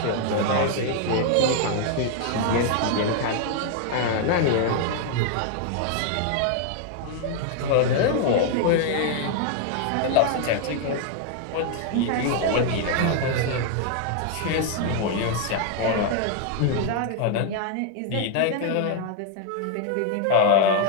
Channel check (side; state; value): both; different; correlation 0.00